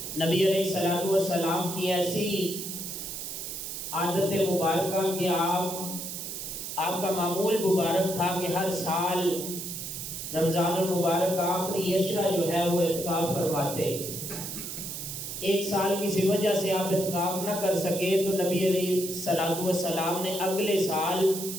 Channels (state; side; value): noise; right; hiss, 7 dB below the sound